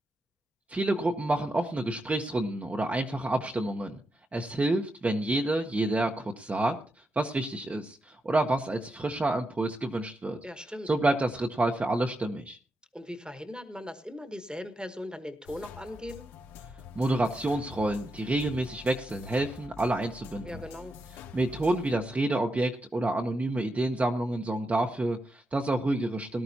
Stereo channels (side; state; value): both; normal; correlation 0.86